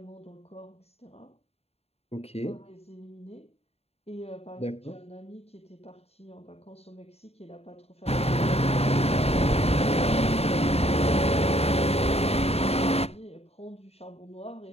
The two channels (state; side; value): late; right; 0.30 ms